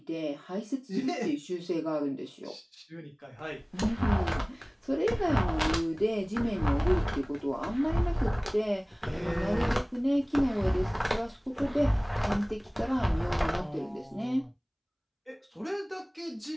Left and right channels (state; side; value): identical; both; correlation 1.00